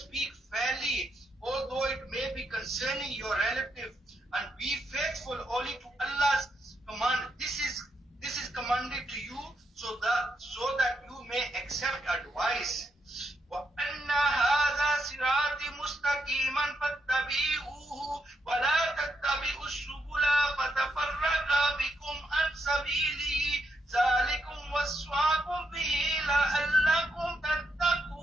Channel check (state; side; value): normal; both; correlation 0.80